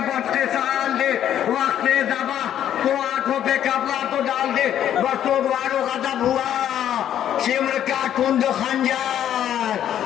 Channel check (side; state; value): right; quieter; 10.6 dB